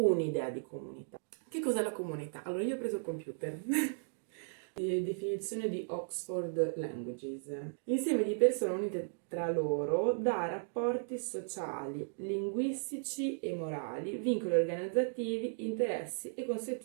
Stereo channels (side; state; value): left; silent; digital silence